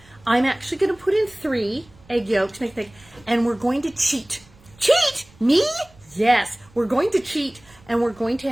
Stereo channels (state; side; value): noise; right; rumble, 27 dB below the sound